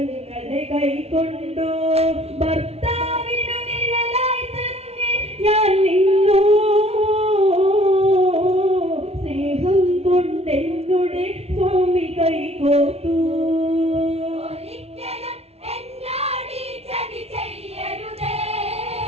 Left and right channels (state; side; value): late; left; 0.30 ms